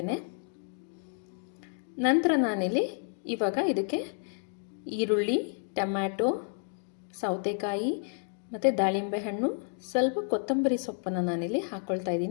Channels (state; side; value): silent; right; 56 dB below the other